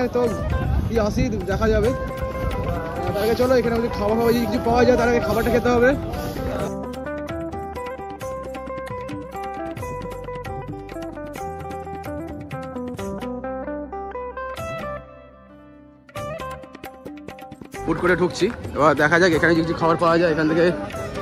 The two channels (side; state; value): both; identical; correlation 1.00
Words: তো আসি দেখা যাবে। তার আগে চলো এখানে খাবার ফাবার যদি কিছু পাওয়া যায়, তার আগে খাবারটা খেতে হবে। ফুড করে ঢুকছি, এবার দেখা যাক এখানে যদি কিছু খাবার পাওয়া যায়, এখান থেকে